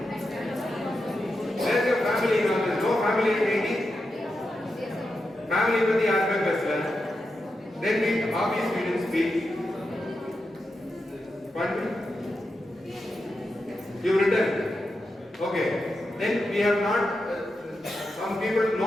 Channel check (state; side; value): normal; both; correlation 0.88